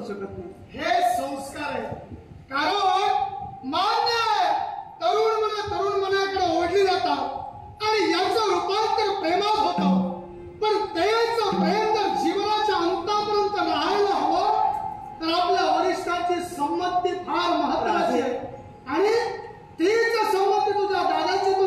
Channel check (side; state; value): both; identical; correlation 1.00